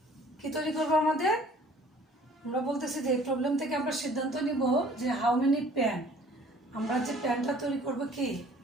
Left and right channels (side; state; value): both; normal; correlation 0.53